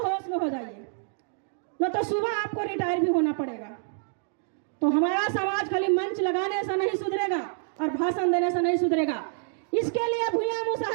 होश में हो जाइए, न तो सुबह आपको रिटायर भी होना पड़ेगा। तो हमारा समाज खाली मंच लगाने से नहीं सुधरेगा और भाषण देने से नहीं सुधरेगा। इसके लिए भूया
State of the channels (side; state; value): left; silent; digital silence